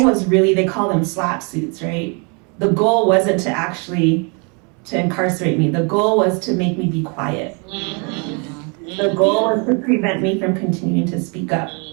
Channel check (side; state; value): left; quieter; 34.5 dB